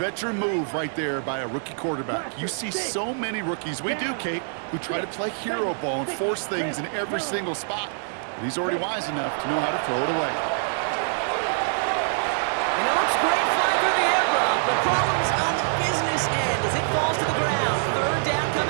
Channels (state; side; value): silent; left; digital silence